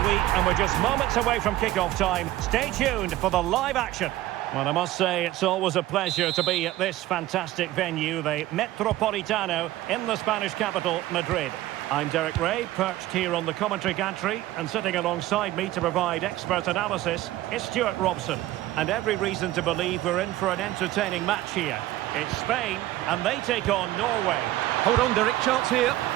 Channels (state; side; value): quieter; left; 15.6 dB